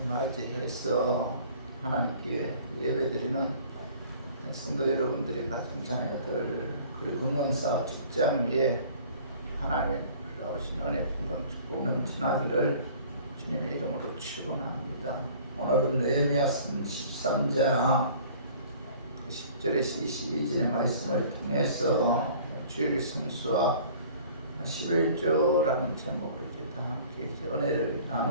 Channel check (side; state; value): both; inverted; correlation -0.49